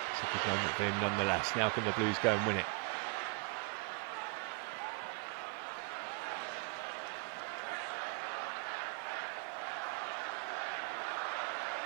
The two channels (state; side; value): quieter; left; 33.1 dB